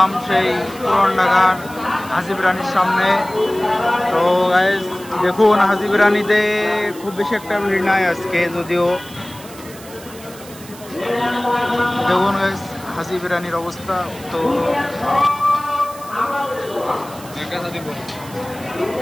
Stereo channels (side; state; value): right; noise; hiss, 18 dB below the sound